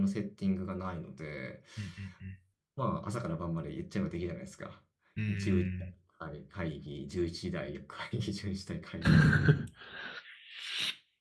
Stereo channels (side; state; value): both; identical; correlation 1.00